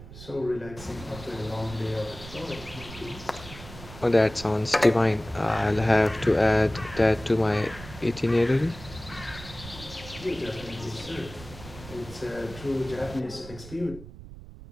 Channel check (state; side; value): noise; right; rumble, 15 dB below the sound